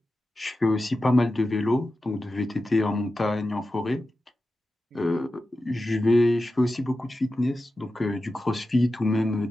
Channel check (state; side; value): normal; both; correlation 0.92